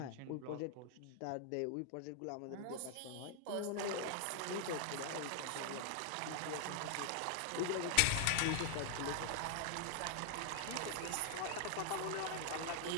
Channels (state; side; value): different; both; correlation -0.01